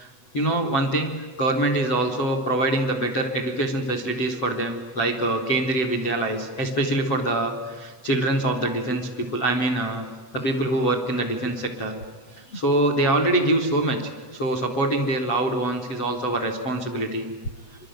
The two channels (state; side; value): late; right; 8.0 ms